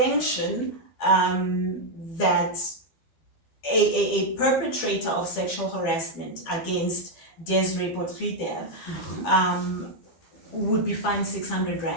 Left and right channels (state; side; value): late; right; 12 ms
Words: that a perpetrator of sexual harassment against Desiree Potriter would be fined 600